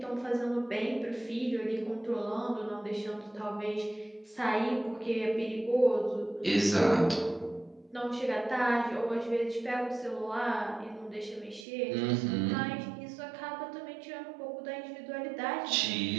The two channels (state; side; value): drops out; left; at 11.7 s